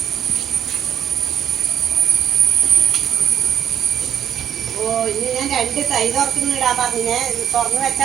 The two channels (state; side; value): quieter; left; 9.7 dB